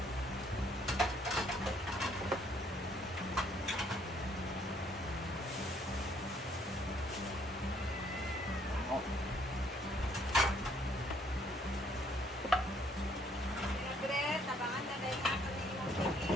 Tabangan na dahil natin yung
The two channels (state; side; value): normal; both; correlation 0.65